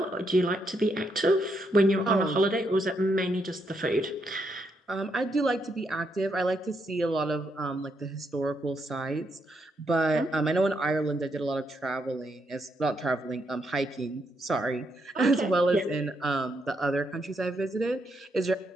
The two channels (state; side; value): normal; both; correlation 0.78